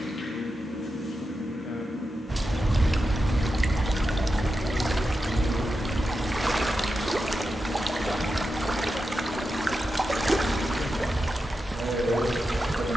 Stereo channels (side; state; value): both; normal; correlation 0.90